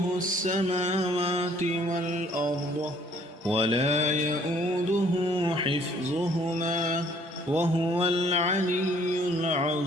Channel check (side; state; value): both; normal; correlation 0.60